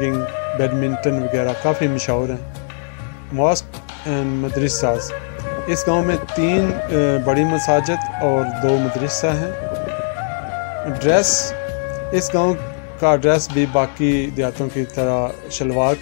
بیڈمنٹن وغیرہ کافی مشہور ہیں۔ ماسک اینڈ مدرساز، اس گاؤں میں 3 بڑی مساجد اور 2 مدرسہ ہیں۔ ڈریس، اس گاؤں کا ڈریس بھی باقی دیہاتوں کی طرح شلوار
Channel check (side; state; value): right; silent; 66 dB below the other